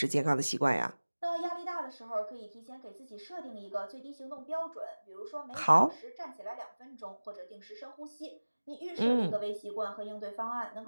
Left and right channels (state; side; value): inverted; both; correlation -1.00